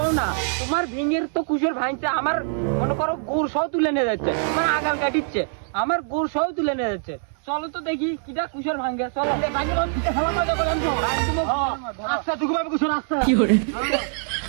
না তোমার ভিঙের তো কুসর ভাঙছে আমার মনে করো গোড় সহ তুলে নিয়ে যাচ্ছে আমার আগাল কাটিচ্ছে আমার গোড় সহ তুলে নিয়ে যাচ্ছে চলো তো দেখি কিটা কুসর ভাঙে চলো আচ্ছা টুকু ভাবে কুসর আসছে কি করে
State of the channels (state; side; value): silent; left; digital silence